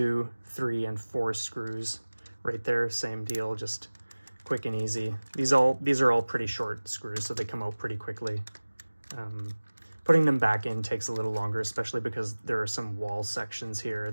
3, and 4 screws right there. Same deal, just quick and easy. These are all pretty short screws, so they come out pretty quickly. Putting them back in takes a little longer, especially because there are some wall sections here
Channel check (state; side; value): inverted; both; correlation -1.00